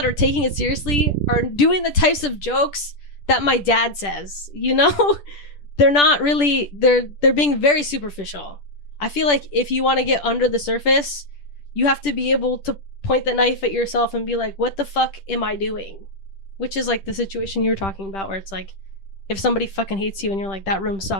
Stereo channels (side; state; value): right; late; 10 ms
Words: are taking it seriously are doing the types of jokes that my dad says, you know? They're not really, they're being very superficial. I feel like if you want to get under the surface, you have to be able to point the knife at yourself and be like, what the fuck am I doing? Which is like the situation you were talking about, where it's like, if somebody fucking hates you and you're like, that room